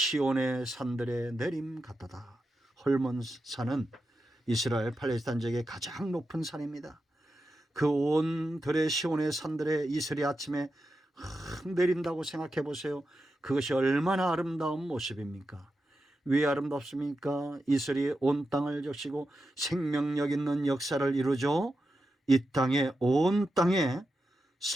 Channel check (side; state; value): both; normal; correlation 0.89